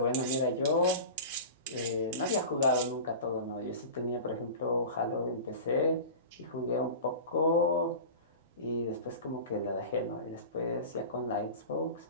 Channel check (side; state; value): both; inverted; correlation -0.33